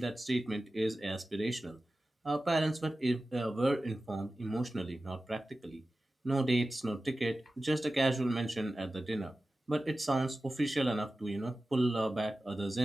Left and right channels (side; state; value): both; normal; correlation 0.95